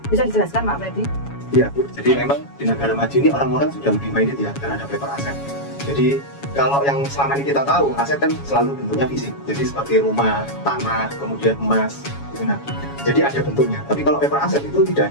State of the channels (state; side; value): late; right; 7.2 ms